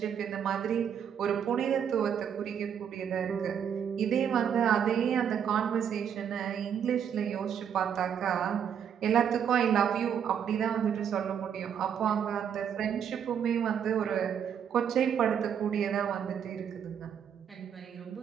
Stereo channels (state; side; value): quieter; left; 8.3 dB